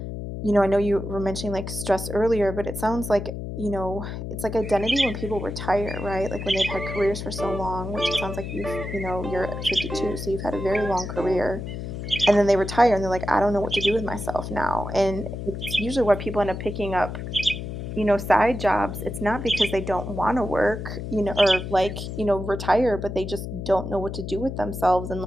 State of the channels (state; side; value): noise; left; hum, 7 dB below the sound